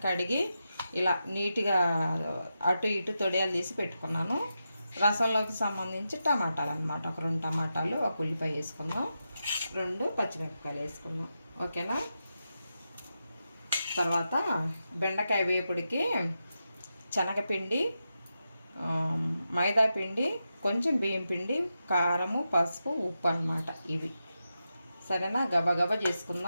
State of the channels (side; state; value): both; inverted; correlation -0.88